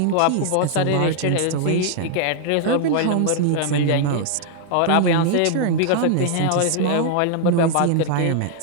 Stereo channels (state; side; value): different; both; correlation -0.01